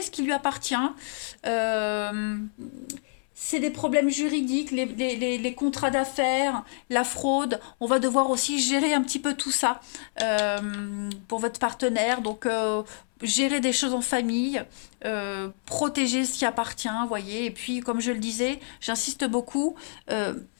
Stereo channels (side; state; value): right; silent; 60 dB below the other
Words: ce qui lui appartient. c'est des problèmes juridiques, les contrats d'affaires, la fraude. On va devoir aussi gérer un petit peu tout ça pour votre partenaire. Donc, gérer des choses en famille, protéger ce qui appartient, vous voyez. Et puis, comme je le disais, j'insiste beaucoup,